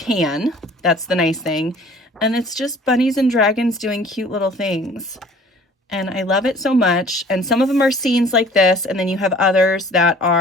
That's the nice thing. And it's just bunnies and dragons doing cute little things. And I love it so much. And some of them are scenes like this, and then you have others that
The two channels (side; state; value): both; normal; correlation 0.51